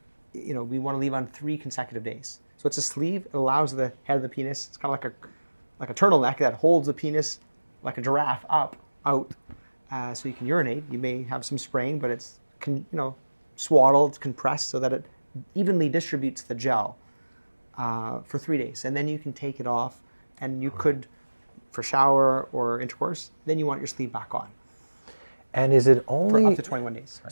We want to leave on 3 consecutive days. So it's a sleeve. It allows the head of the penis. It's kind of like a turtleneck that holds the penis like a giraffe out, so you can urinate. You may have some spraying, but it's swaddled, compressed, so that it evenly distributes the gel for 3 days, and then you can take it off, and you could, for shower or intercourse, then you want your sleeve back on. And is it only for up to 21 days?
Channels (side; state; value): both; inverted; correlation -1.00